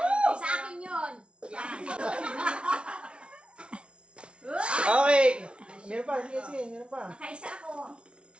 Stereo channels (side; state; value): left; late; 0.059 ms